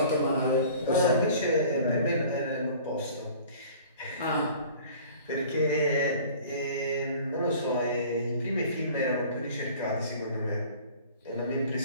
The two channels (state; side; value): inverted; both; correlation -0.47